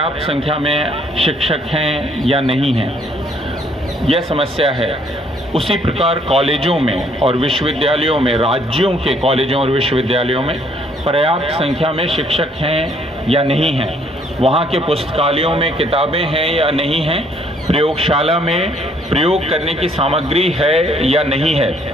संख्या में शिक्षक हैं या नहीं हैं, यह समस्या है। उसी प्रकार कॉलेजों में और विश्वविद्यालयों में, राज्यों के कॉलेजों और विश्वविद्यालयों में पर्याप्त संख्या में शिक्षक हैं या नहीं हैं, वहाँ के पुस्तकालयों में किताबें हैं या नहीं हैं, प्रयोगशाला में प्रयोग करने की सामग्री है या नहीं है,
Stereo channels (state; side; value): normal; both; correlation 0.65